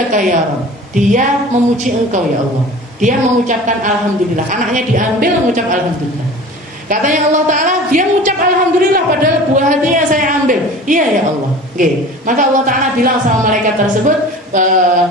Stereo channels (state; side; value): normal; both; correlation 0.40